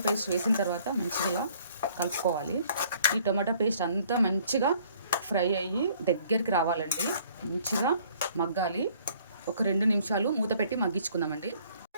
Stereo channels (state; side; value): inverted; both; correlation -0.59